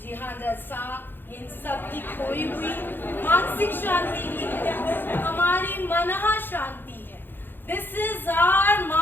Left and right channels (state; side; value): late; right; 0.097 ms